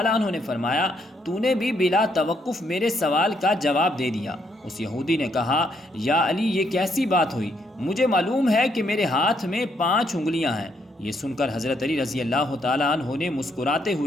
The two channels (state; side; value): normal; both; correlation 0.74